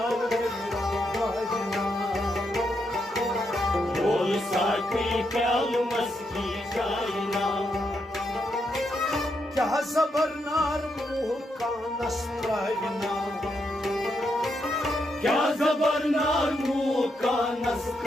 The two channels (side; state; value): both; normal; correlation 0.80